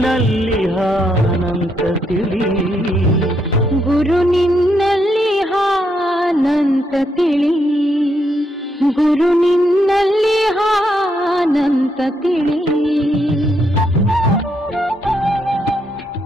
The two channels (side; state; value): both; normal; correlation 0.78